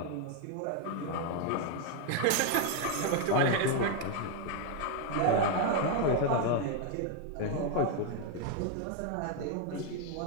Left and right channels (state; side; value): different; both; correlation 0.00